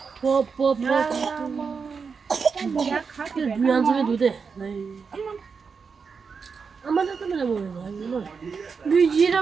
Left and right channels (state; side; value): quieter; left; 5.5 dB